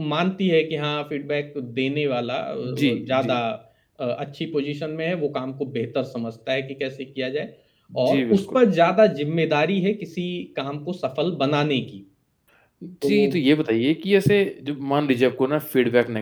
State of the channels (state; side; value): identical; both; correlation 1.00